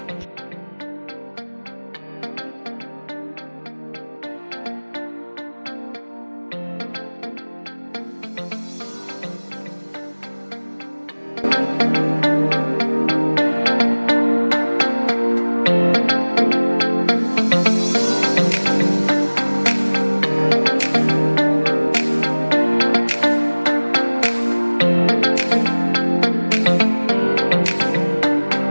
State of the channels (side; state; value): both; inverted; correlation -1.00